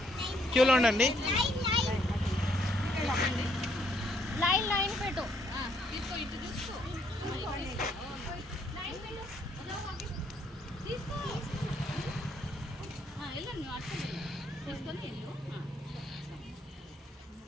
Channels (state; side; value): normal; both; correlation 0.70